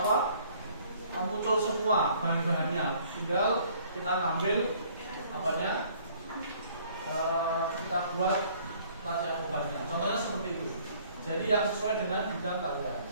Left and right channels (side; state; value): both; inverted; correlation -0.58